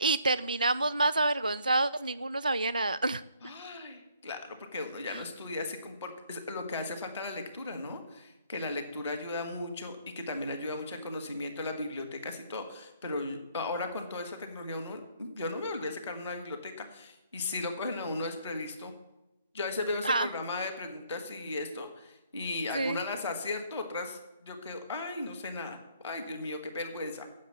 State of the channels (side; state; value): both; inverted; correlation -0.64